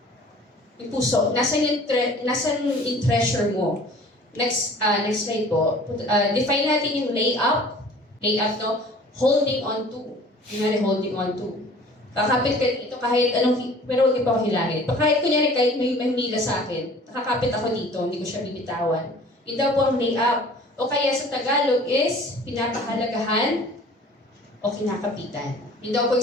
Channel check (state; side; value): normal; both; correlation 0.48